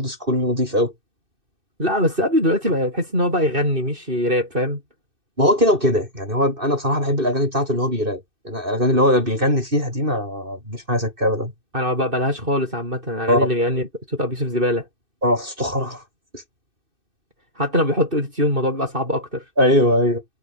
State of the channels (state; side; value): late; left; 2.6 ms